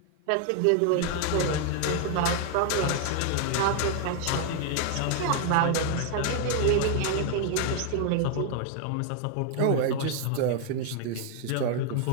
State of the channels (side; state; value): both; different; correlation 0.00